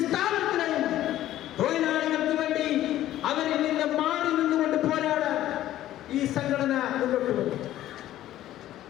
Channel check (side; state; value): right; quieter; 13.5 dB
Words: സ്ഥാപനത്തിനെയും തൊഴിലാളികൾക്ക് വേണ്ടി അവരിൽ നിന്ന് മാറി നിന്നുകൊണ്ട് പോരാടാൻ ഈ സംഘടന മുന്നോട്ട് വന്നു.